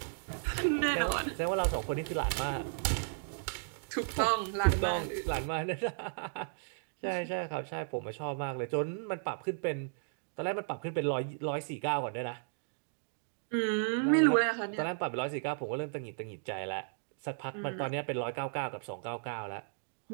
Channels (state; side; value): silent; left; digital silence